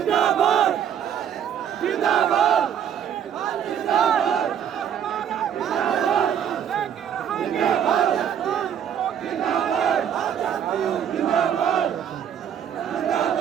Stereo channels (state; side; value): quieter; left; 8.9 dB